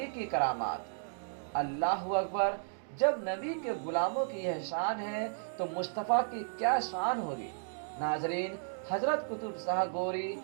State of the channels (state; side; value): silent; left; digital silence